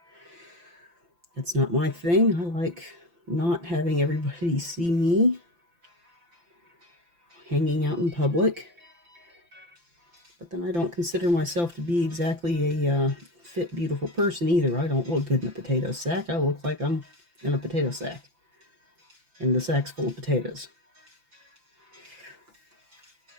That's not my thing. I like not having everybody see me hanging out in public. But then I don't consider myself to be exactly a fit, beautiful person either. I don't look good in a potato sack. I look like I'm in a potato sack. And the sack's full of potatoes.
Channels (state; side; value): late; left; 5.9 ms